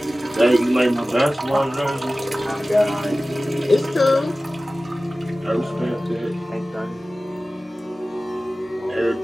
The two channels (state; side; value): normal; both; correlation 0.96